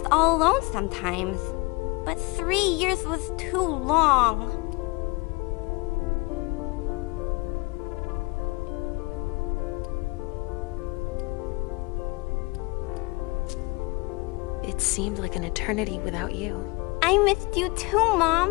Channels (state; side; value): quieter; right; 25.7 dB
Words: all alone sometimes. But 3 years was too long. It seemed like an eternity without you. I missed you too,